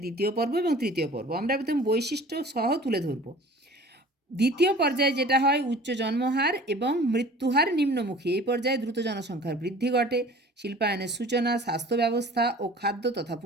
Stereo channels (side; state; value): both; normal; correlation 0.45